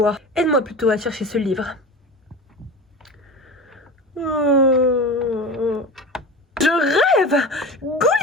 Aide-moi plutôt à chercher ce livre. Je rêve!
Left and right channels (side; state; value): both; normal; correlation 0.31